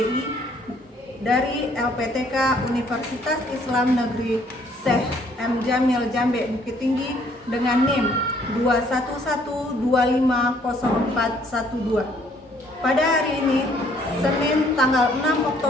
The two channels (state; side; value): normal; both; correlation 0.63